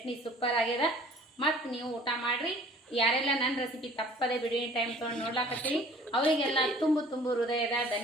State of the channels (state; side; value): normal; both; correlation 0.51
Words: ಸೂಪರ್ ಆಗ್ಯದ. ಮತ್ತು ನೀವು ಊಟ ಮಾಡಿರಿ. ಯಾರೆಲ್ಲ ನನ್ನ ರೆಸಿಪಿ ತಪ್ಪದೆ ಬಿಡುವಿನ ಟೈಮ್ ತೊಗೊಂಡು ನೋಡ್ಲಾಕತ್ತೀರಿ ಅವರಿಗೆಲ್ಲ ತುಂಬು ಹೃದಯದ